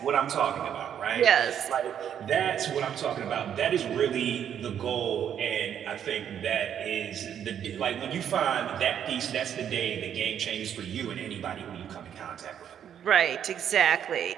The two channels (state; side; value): quieter; left; 9.2 dB